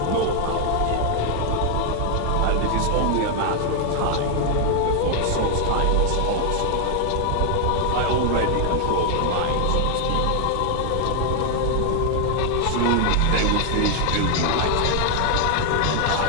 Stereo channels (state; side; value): different; both; correlation 0.00